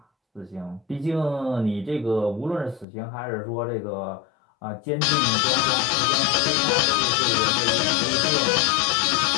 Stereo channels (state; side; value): drops out; right; at 2.9 s